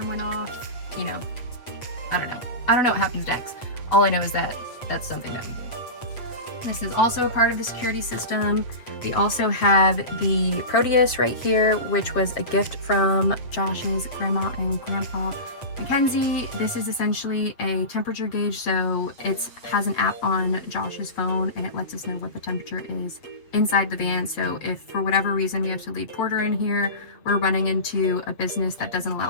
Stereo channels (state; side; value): late; right; 7.8 ms